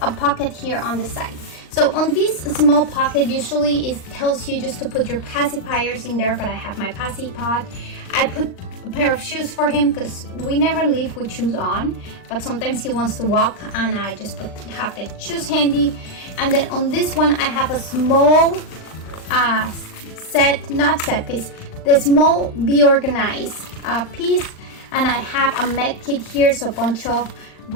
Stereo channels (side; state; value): right; late; 39 ms